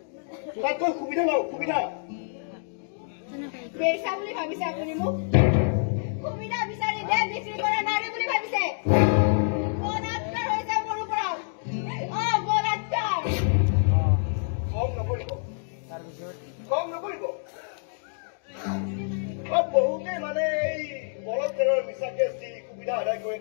তাতকৈ সুবিধা লওক, সুবিধা পেইচা বুলি ভাবিছে আপুনি মোক? সুবিধা বিচাৰি দেহ বিক্ৰী কৰা নাৰী বুলি ভাবিছে? বলাৎকাৰ হৈছে মোৰ ওপৰত। বলাৎকাৰ। খং নকৰিব, খং নকৰিব। বহুতে মানে এই বলৎকাৰৰ মিছা কেছ দি সুবিধা আদায়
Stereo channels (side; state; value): right; silent; digital silence